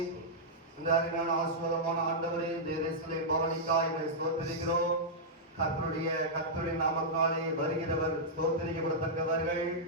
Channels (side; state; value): both; normal; correlation -0.09